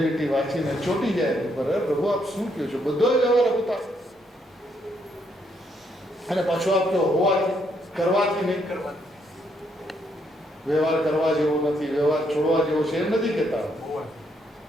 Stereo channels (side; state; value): both; normal; correlation 0.74